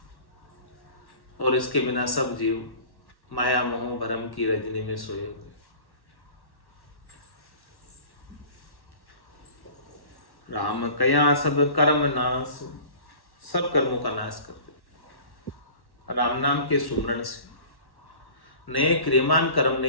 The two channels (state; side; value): late; right; 1.1 ms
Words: और इसके बिना सब जीव माया मोह भरम की रजनी में सोए हुए। राम कया सब कर्म नाश, सब कर्मों का नाश कर दे राम नाम के सुमरण से। नए क्रियमान कर्म